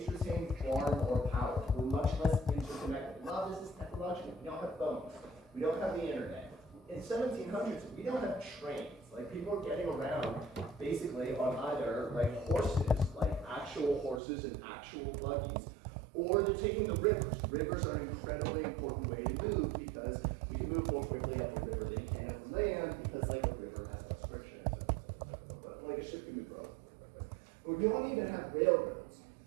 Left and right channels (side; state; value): left; drops out; at 14.2 s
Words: retained far more power. We're much less interconnected. A lot of this is technological. We don't have phones. We don't have the internet. In 1700s, we don't have trains. Like people are getting around basically on either like horses, like actual horses and actual buggies, or they're taking the rivers. Rivers are an incredibly important way to move because we can move more quickly up the river than you can up the land because like a river has less friction. But like a ship can move relatively quickly. But you don't even have railroads.